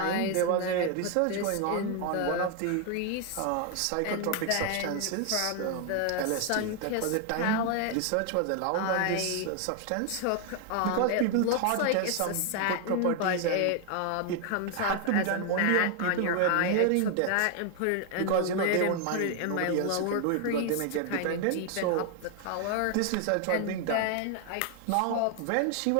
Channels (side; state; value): both; different; correlation 0.00